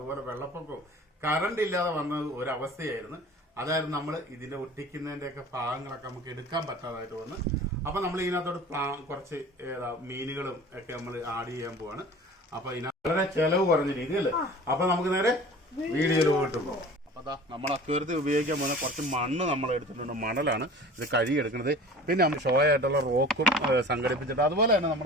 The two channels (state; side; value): normal; both; correlation 0.42